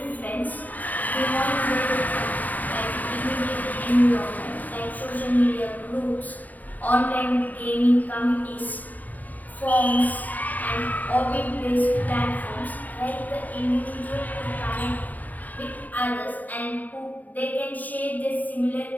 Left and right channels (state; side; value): late; right; 0.080 ms